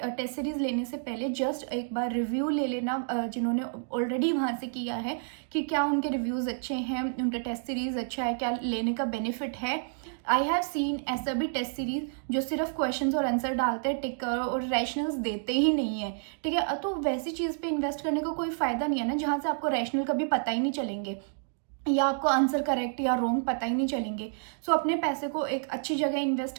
सीरीज लेने से पहले जस्ट एक बार रिव्यू ले लेना जिन्होंने ऑलरेडी वहाँ से किया है कि क्या उनके रिव्यूज़ अच्छे हैं, उनका टेस्ट सीरीज अच्छा है, क्या लेने का बेनिफिट है। आई हैव सीन ऐसा भी टेस्ट सीरीज जो सिर्फ क्वेश्चंस और आंसर डालते हैं, टिक और रैशनल्स देते ही नहीं है, ठीक है। तो वैसी चीज़ पे इन्वेस्ट करने का कोई फ़ायदा नहीं है ना, जहाँ से आपको रैशनल कभी पता ही नहीं चलेंगे या आपको आंसर करेक्ट या रॉन्ग पता ही नहीं चलेंगे। अपने पैसे को एक अच्छी जगह इन्वेस्ट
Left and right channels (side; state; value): left; silent; digital silence